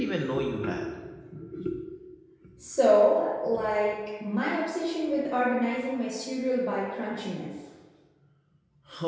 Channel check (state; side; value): identical; both; correlation 1.00